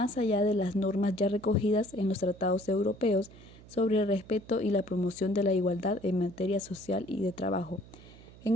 allá de las normas ya recogidas en los tratados europeos sobre el respeto y la promoción de la igualdad en materia social y de trabajo.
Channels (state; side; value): noise; right; hum, 20 dB below the sound